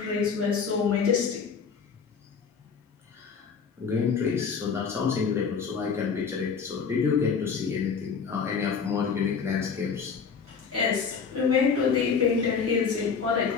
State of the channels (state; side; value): quieter; right; 5.9 dB